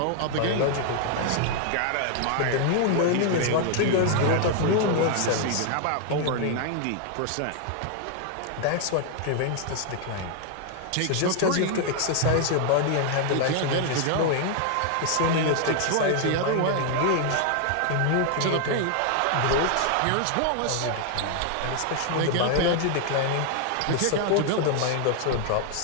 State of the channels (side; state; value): both; different; correlation 0.00